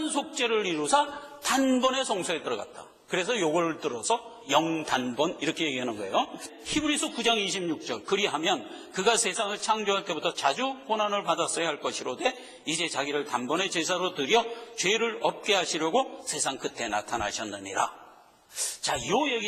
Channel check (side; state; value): both; identical; correlation 1.00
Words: 속죄를 이루사 단번에 성소에 들어갔다. 그래서 요걸 들어서 영단번 이렇게 얘기하는 거예요. 히브리서 9장 26절 그리하면 그가 세상을 창조할 때부터 자주 고난을 받았어야 할 것이로되 이제 자기를 단번에 제사로 드려 죄를 없게 하시려고 세상 끝에 나타나셨느니라. 자, 이